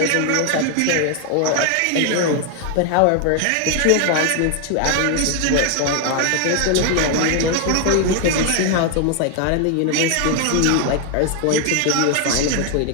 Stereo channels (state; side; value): different; both; correlation 0.00